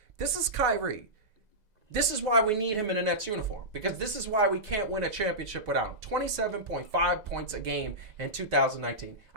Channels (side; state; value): left; late; 2.0 ms